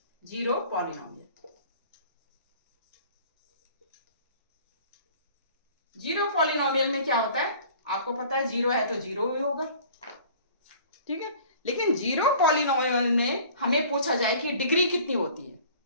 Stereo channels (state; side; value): inverted; both; correlation -0.48